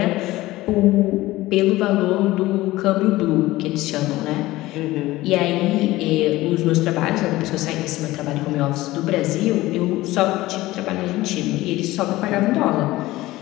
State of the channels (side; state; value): right; quieter; 17.8 dB